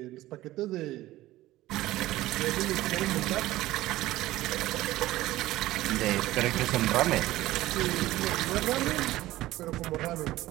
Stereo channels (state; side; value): quieter; left; 16.5 dB